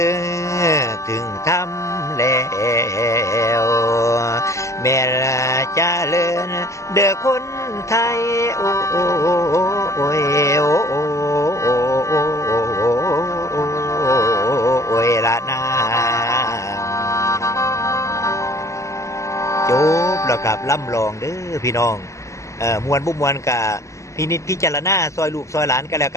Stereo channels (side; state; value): right; late; 0.15 ms